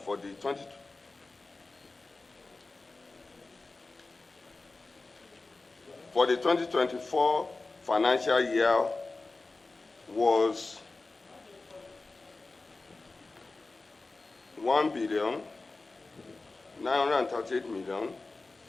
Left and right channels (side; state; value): right; quieter; 3.5 dB